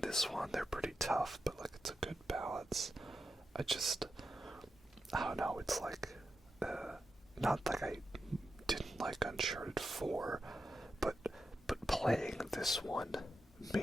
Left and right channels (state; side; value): normal; both; correlation 0.88